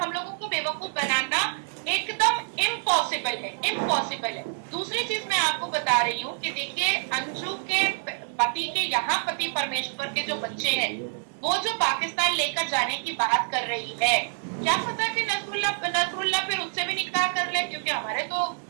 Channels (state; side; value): silent; left; digital silence